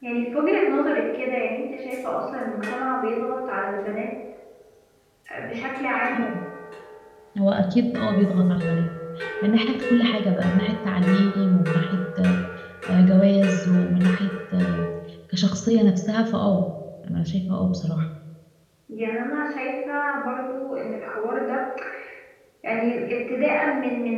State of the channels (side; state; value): both; identical; correlation 1.00